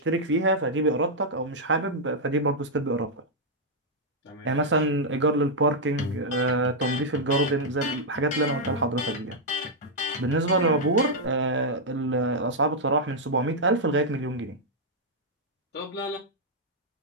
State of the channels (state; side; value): normal; both; correlation -0.05